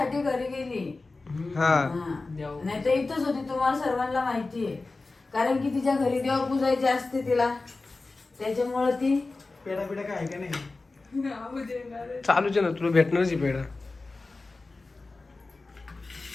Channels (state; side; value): quieter; right; 3.5 dB